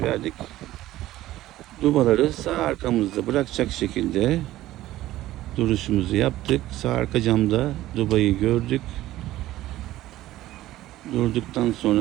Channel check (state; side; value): quieter; left; 15.3 dB